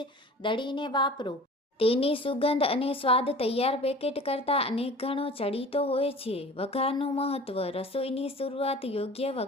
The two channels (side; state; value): both; normal; correlation 0.42